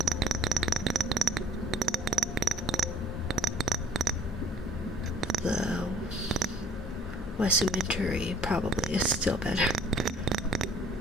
Wesumentary probably is still better.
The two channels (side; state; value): both; normal; correlation 0.56